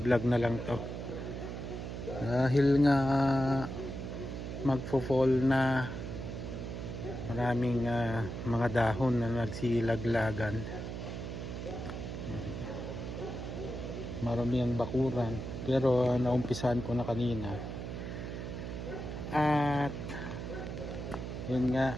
na lang to. Dahil nga magfo-fall na, maraming mga dahon na nagsilaglagan. Marami ang bakuran, pero naumpisahan ko na kanina. At yun nga,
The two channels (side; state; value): right; noise; hum, 6 dB below the sound